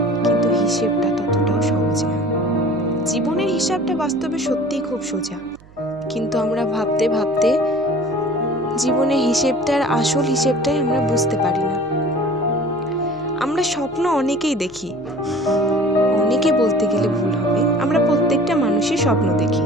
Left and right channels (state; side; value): noise; right; hum, 24 dB below the sound